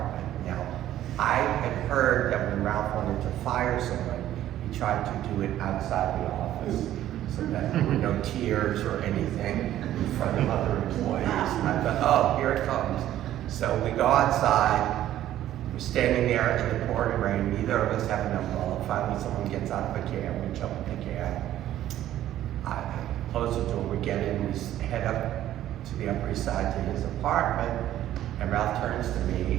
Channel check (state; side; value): quieter; left; 12.7 dB